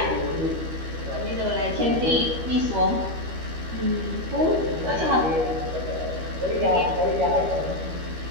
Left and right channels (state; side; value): late; left; 13 ms